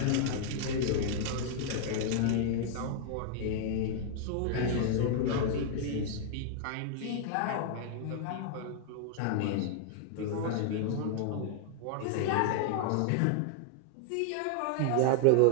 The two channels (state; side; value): different; both; correlation 0.00